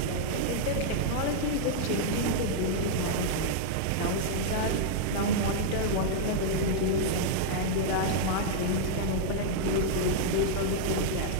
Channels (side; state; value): both; different; correlation -0.01